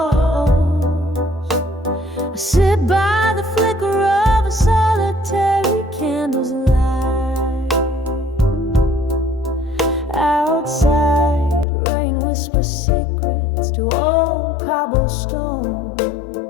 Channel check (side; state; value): right; drops out; at 11.7 s